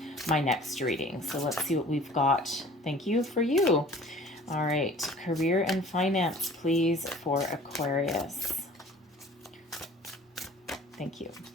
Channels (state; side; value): normal; both; correlation 0.48